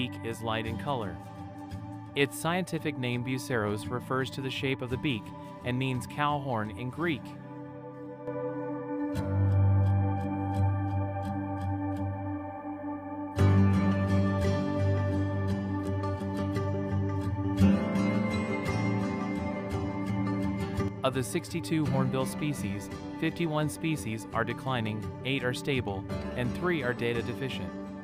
is light in color. Its scientific name buceros refers to the shape of the beak and means cow horn in Greek. Of the 62 hornbill species, 51 species are declining, 8 are stable, and 3 are data deficient.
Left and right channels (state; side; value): identical; both; correlation 1.00